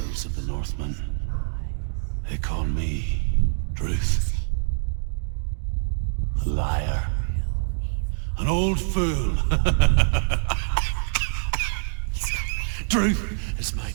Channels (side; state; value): left; silent; digital silence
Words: of the Northmen, they call me Druth. A liar. He's lost. An old fool. Truth is my